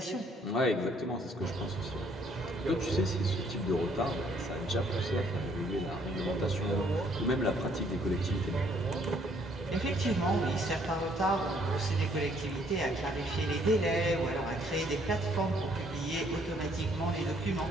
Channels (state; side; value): normal; both; correlation 0.65